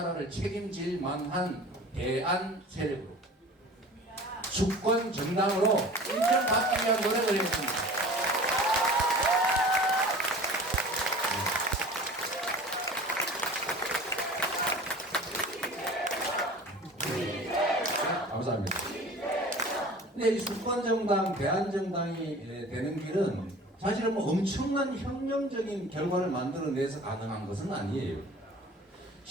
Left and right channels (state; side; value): normal; both; correlation 0.41